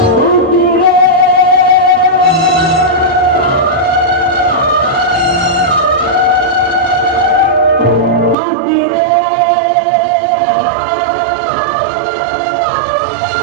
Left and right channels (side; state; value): left; drops out; at 8.3 s